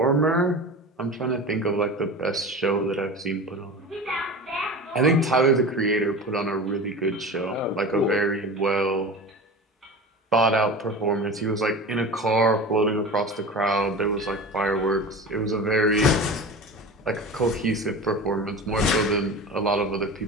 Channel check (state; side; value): normal; both; correlation 0.31